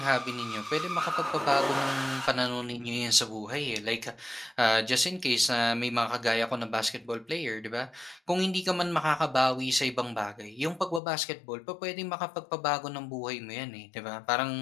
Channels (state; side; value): drops out; right; at 11.0 s